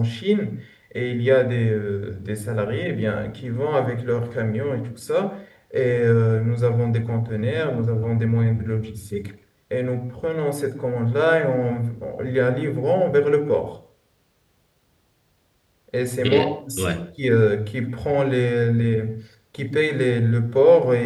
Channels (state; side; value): identical; both; correlation 1.00